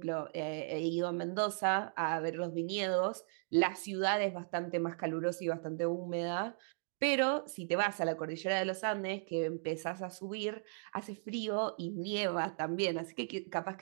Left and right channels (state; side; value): silent; left; digital silence